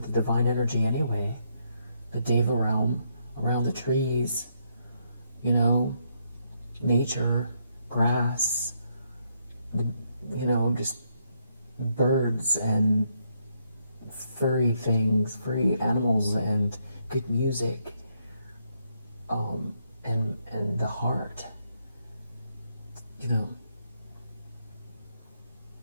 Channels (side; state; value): both; inverted; correlation -0.76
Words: the divine energy anyway. The Deva realm, around the trees, nature, grass, just birds and furry things, furry animals, and good music, and the heart,